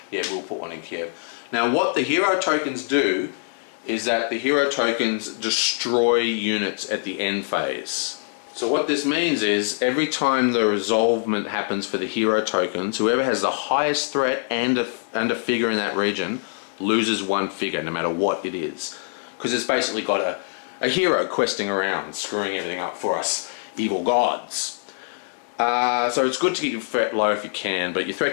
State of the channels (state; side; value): silent; right; digital silence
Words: Yeah, we'll put one in Kiev. Now what the hero tokens do is that the hero tokens destroy units at the end phase. So what this means is every time the resolvement happens for the hero tokens, whoever has the highest threat and a figure in that region loses 1 figure no matter what it is. Because it's basically got a hero questing around, screwing everything up for us evil gods. So it's good to get your threat low if you can, but your